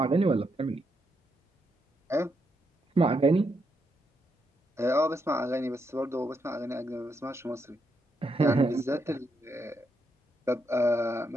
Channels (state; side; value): normal; both; correlation 0.80